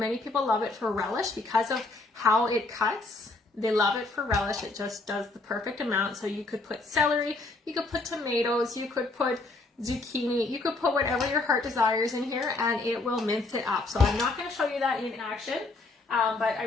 people love it for relish because of how it cuts. They love it for relish. It just does the perfect amount. So you could put celery, you could put tomatoes, you could put zucchini, you could put whatever your heart desires in here, and it will mince it up. So I'm not going to show you that in action, but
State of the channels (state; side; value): quieter; right; 3.3 dB